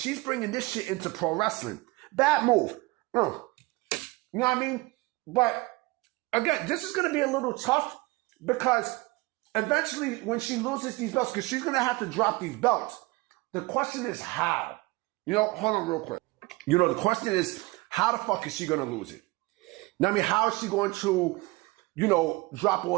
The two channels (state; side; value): quieter; left; 23.1 dB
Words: bringing this shit into pro wrestling. Bad move. You know what I mean? But, again, this is going to be a little tough because eventually, when she loses these belts, because she's going to have to drop these belts, the question is how. Hold on real quick. The question is, how the fuck is she going to lose it? Now, I mean, how is she going to, drop